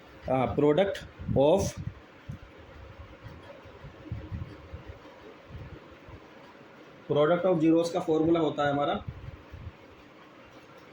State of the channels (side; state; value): both; identical; correlation 1.00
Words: प्रोडक्ट ऑफ ज़ीरोज़ का फॉर्मूला होता है हमारा